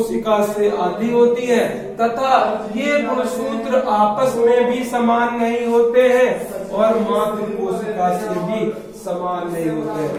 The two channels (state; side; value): identical; both; correlation 1.00